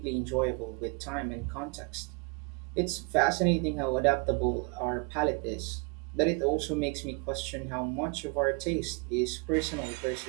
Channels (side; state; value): left; quieter; 32.7 dB